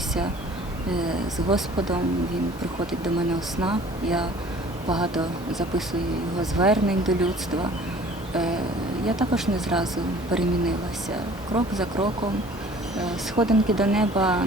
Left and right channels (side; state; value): both; normal; correlation 0.50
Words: з Господом, Він приходить до мене у снах, я багато записую його звернень до людства. Я також не зразу перемінилася. Крок за кроком. Сходинки до неба